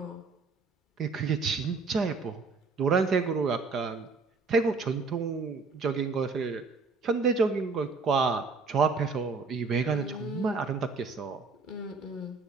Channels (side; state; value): left; quieter; 4.3 dB